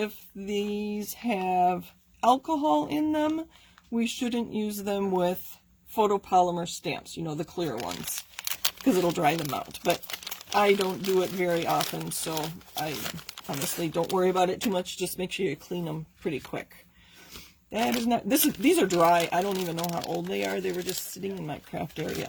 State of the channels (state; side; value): identical; both; correlation 1.00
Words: these have alcohol in them, we shouldn't use them with photopolymer stamps, you know, the clear ones, because it'll dry them out. But I don't do it very often, so I honestly don't worry about it too much. Just make sure you clean them pretty quick. That is not, these are dry. I don't even know how old they are. They were just sitting in my craft